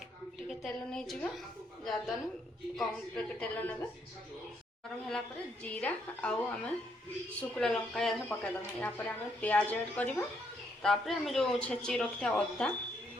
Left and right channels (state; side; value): normal; both; correlation 0.73